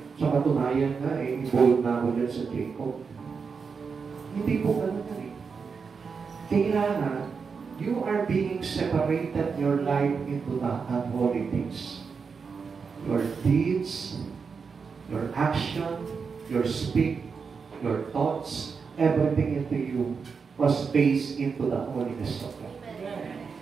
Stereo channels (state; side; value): quieter; left; 5.5 dB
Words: sa katunayan nga, involved na ako dyan sa Jacob. Hindi po ganun yan eh. Kailangan, you are being separated your life into the unholy things. Your deeds, your action, your speak, your thoughts, everything into you was based into the holiness of God.